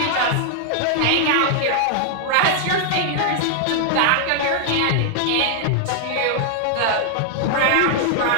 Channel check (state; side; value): different; both; correlation 0.00